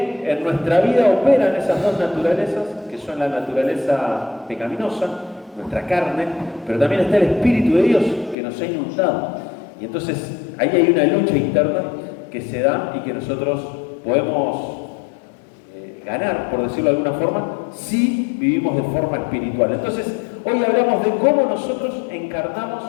en nuestra vida operan esas dos naturalezas, que son la naturaleza pecaminosa, nuestra carne, pero también está el Espíritu de Dios que nos ha inundado. Y entonces ahí hay una lucha interna que se da y que nosotros podemos ganar, por decirlo de alguna forma, si vivimos de forma espiritual. Entonces, hoy hablamos de cómo nosotros encarnamos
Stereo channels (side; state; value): right; drops out; at 8.3 s